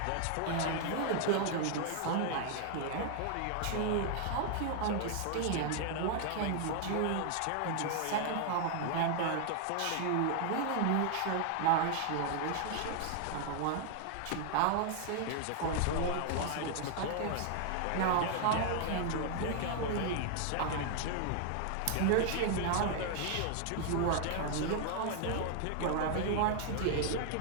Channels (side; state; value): both; different; correlation 0.00